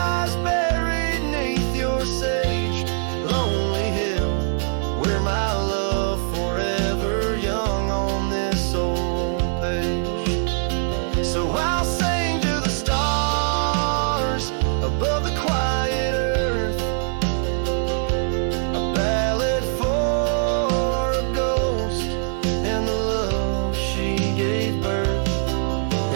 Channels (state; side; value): silent; left; digital silence